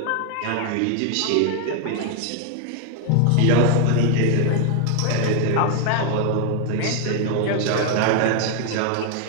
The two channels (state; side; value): different; both; correlation 0.01